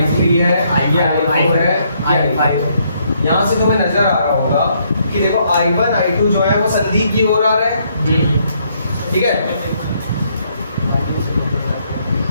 है, ये I4 है, ये I5 है। यहाँ से तुम्हें नजर आ रहा होगा कि देखो I1 I2 जो है वो संधि की ओर आ रहा है। ठीक है,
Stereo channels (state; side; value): inverted; both; correlation -0.71